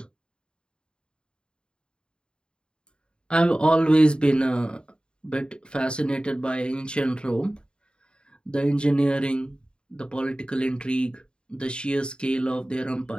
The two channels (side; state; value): right; late; 0.051 ms